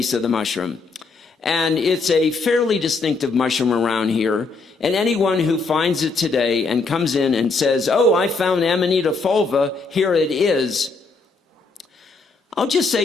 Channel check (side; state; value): right; quieter; 4.1 dB